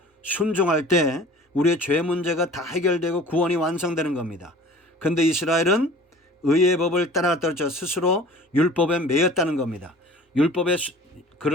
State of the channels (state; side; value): normal; both; correlation 0.45